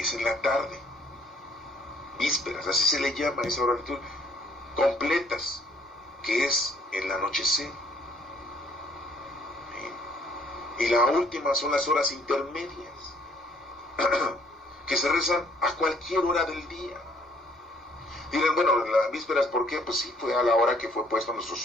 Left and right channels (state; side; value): normal; both; correlation 0.62